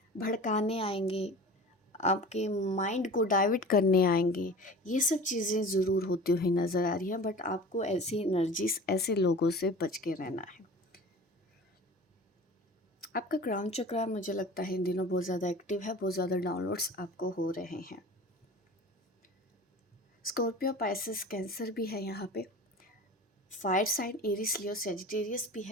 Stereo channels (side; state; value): both; normal; correlation 0.39